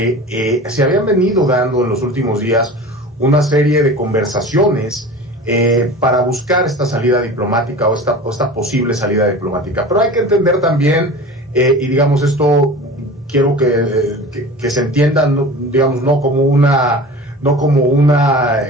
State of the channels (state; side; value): normal; both; correlation 0.37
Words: se habían venido dando en los últimos días una serie de conversaciones para buscar esta salida diplomática o esta posible salida diplomática, pero hay que entender también, y digamos esto quiero que se entienda, digamos, no como un